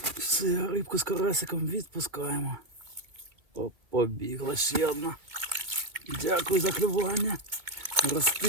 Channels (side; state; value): left; late; 2.4 ms